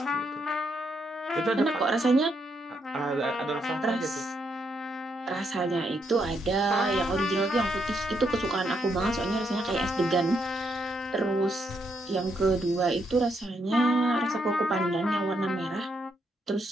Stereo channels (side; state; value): both; normal; correlation 0.77